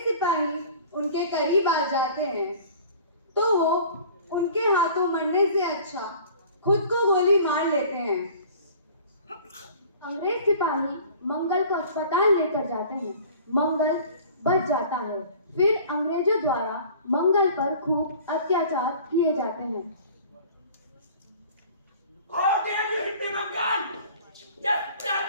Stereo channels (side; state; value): both; inverted; correlation -0.46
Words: सिपाही उनके करीब आ जाते हैं तो वो उनके हाथों मरने से अच्छा खुद को गोली मार लेते हैं। अंग्रेज सिपाही मंगल को अस्पताल लेकर जाते हैं। मंगल बच जाता है। फिर अंग्रेजों द्वारा मंगल पर खूब अत्याचार किए जाते हैं। How dare you hit me, Mangal? Just tell